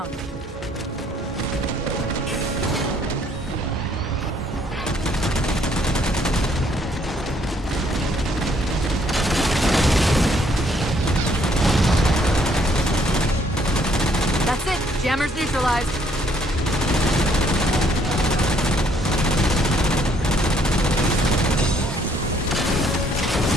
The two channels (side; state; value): both; normal; correlation 0.66